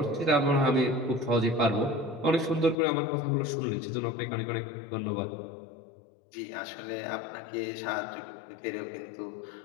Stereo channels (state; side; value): drops out; right; at 2.8 s